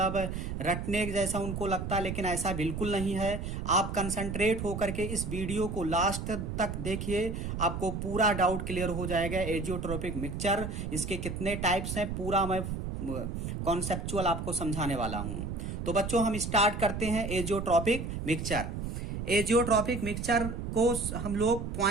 रटने जैसा उनको लगता है, लेकिन ऐसा बिल्कुल नहीं है। आप कंसंट्रेट होकर के इस वीडियो को लास्ट तक देखिए, आपको पूरा डाउट क्लियर हो जाएगा। एजियोट्रोपिक मिक्सचर, इसके कितने टाइप्स हैं, पूरा मैं कॉन्सेप्चुअल आपको समझाने वाला हूं। तो बच्चों, हम स्टार्ट करते हैं एजियोट्रोपिक मिक्सचर। एजियोट्रॉपिक मिक्सचर को हम लोग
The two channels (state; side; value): noise; right; rumble, 5 dB below the sound